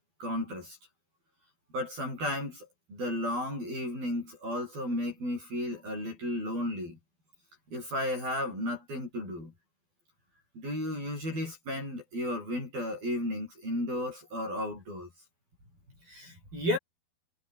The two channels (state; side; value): late; left; 12 ms